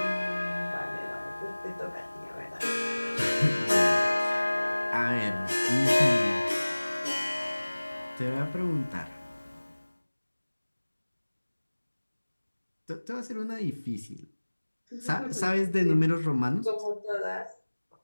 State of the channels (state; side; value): inverted; both; correlation -1.00